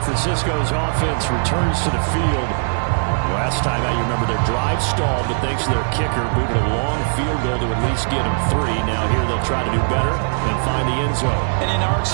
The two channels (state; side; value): silent; left; digital silence